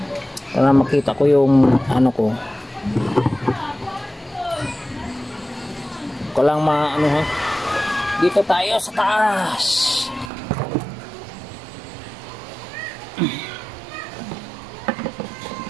Para makita ko yung ano ko. Ko lang ano ha. Dito tayo sa taas.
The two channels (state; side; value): drops out; left; at 10.3 s